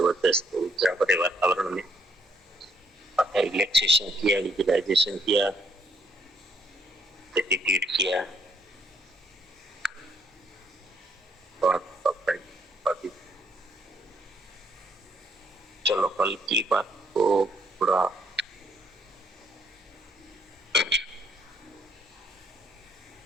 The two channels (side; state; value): both; normal; correlation 0.69